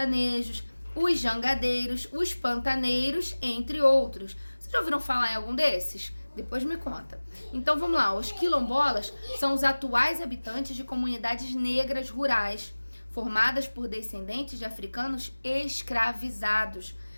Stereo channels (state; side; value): inverted; both; correlation -1.00